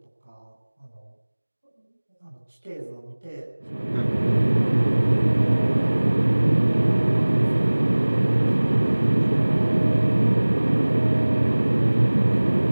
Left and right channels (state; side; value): inverted; both; correlation -1.00